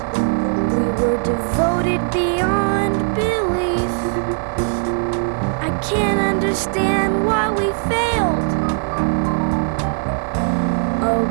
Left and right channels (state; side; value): silent; left; 66 dB below the other